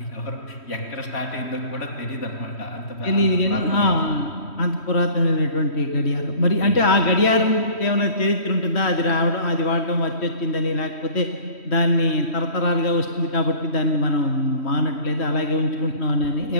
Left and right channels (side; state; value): right; late; 3.1 ms